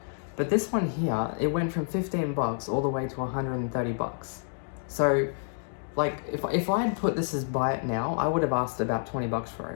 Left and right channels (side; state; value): right; silent; digital silence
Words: But this one here, it went from 15 bucks all the way to 130 bucks. So like, if I had put this as buy it now, I would have asked about 20 bucks for